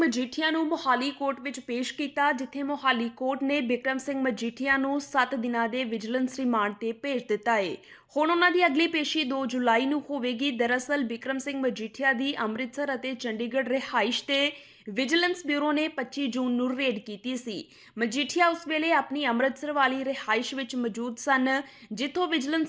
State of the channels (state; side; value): identical; both; correlation 1.00